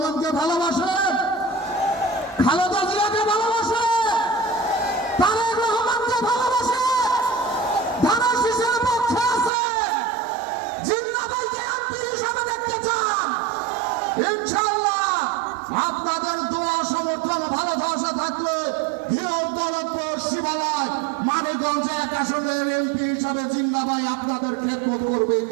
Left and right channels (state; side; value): drops out; left; at 9.5 s